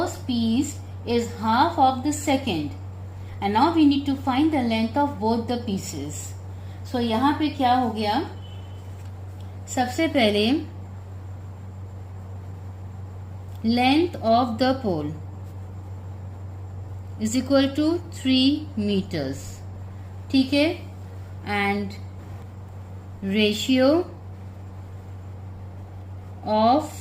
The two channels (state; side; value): identical; both; correlation 1.00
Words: piece is half of the second. And now we need to find the length of both the pieces. So यहाँ पे क्या हो गया, सबसे पहले length of the pole is equal to 3 meters, ठीक है, and ratio of